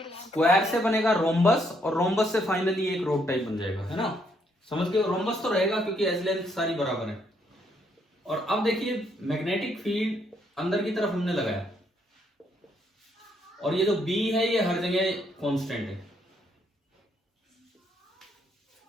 स्क्वायर से बनेगा रोम्बस और रोम्बस से फाइनली एक रोड टाइप बन जाएगा, है ना? समझ गए? रोम्बस तो रहेगा क्योंकि एज लेंथ सारी बराबर है। और अब देखिए मैग्नेटिक फील्ड अंदर की तरफ हमने लगाया और ये जो B है ये हर जगह कांस्टेंट है।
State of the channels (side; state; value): both; normal; correlation 0.72